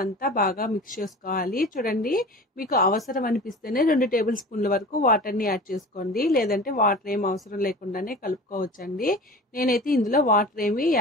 అంతా బాగా మిక్స్ చేసుకోవాలి. చూడండి, మీకు అవసరం అనిపిస్తేనే 2 టేబుల్ స్పూన్ల వరకు వాటర్ని యాడ్ చేసుకోండి, లేదంటే వాటర్ ఏం అవసరం లేకుండానే కలుపుకోవచ్చండి. నేనైతే ఇందులో వాటర్ ఏమీ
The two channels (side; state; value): both; normal; correlation 0.37